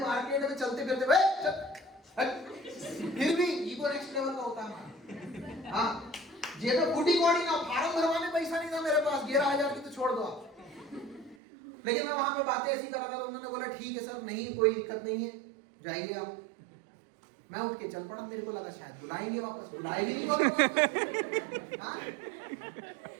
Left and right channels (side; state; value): left; drops out; at 11.4 s